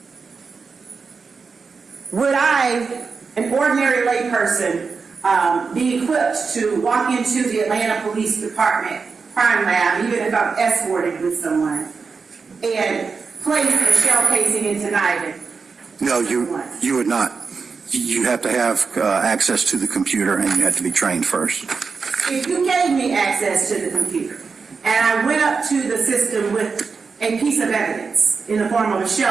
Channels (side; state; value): left; quieter; 5.0 dB